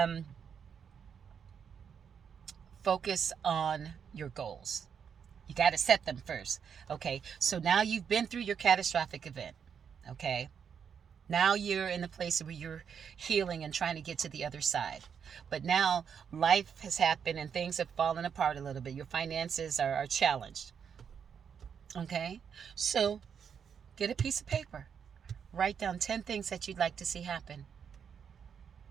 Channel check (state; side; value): quieter; left; 7.3 dB